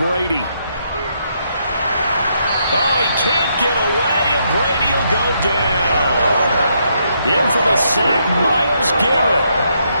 Oh, he can't get away, and Brady will go down. In for the sack, Myles Garrett.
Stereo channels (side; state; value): both; inverted; correlation -0.76